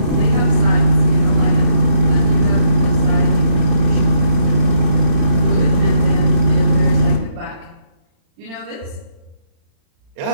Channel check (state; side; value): late; left; 36 ms